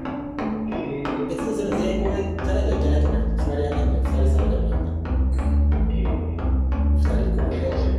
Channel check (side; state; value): both; identical; correlation 1.00